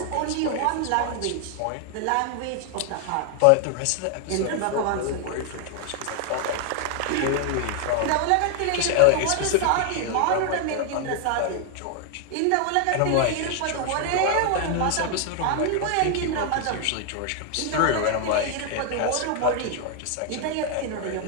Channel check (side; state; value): both; different; correlation 0.00